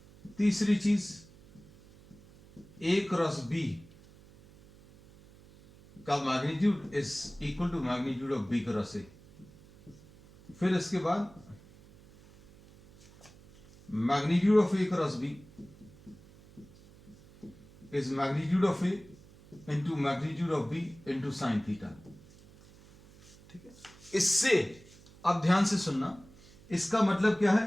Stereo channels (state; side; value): noise; right; hum, 23 dB below the sound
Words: तीसरी चीज ए क्रॉस बी का magnitude is equal to magnitude of B cross A. फिर इसके बाद magnitude of A cross B is magnitude of A into magnitude of B into sine theta. ठीक है, इससे अब ध्यान से सुनना, इसका मतलब क्या